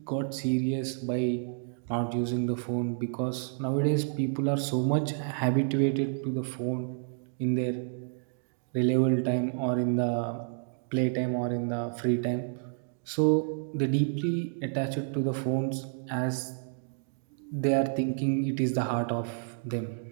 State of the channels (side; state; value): left; silent; digital silence